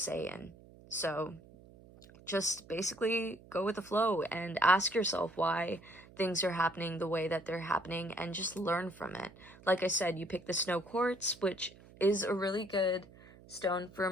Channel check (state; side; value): noise; right; hum, 22 dB below the sound